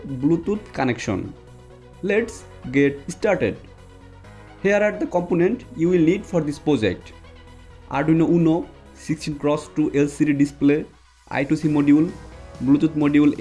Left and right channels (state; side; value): identical; both; correlation 1.00